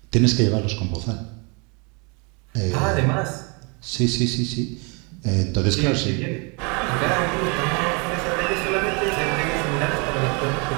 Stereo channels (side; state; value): left; quieter; 32.2 dB